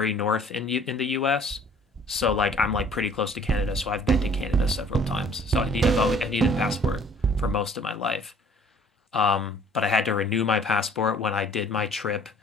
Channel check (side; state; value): both; normal; correlation 0.55